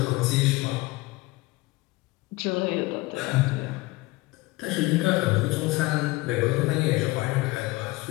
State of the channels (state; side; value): quieter; right; 21.4 dB